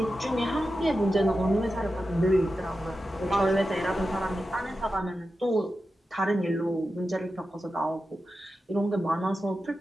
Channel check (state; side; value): normal; both; correlation 0.91